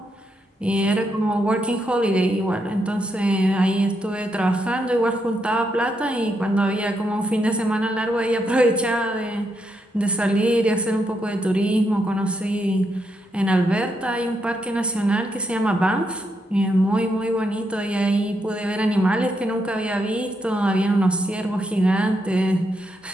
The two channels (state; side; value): normal; both; correlation 0.80